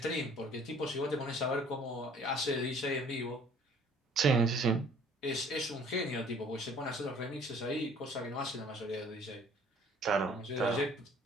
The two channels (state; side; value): normal; both; correlation 0.55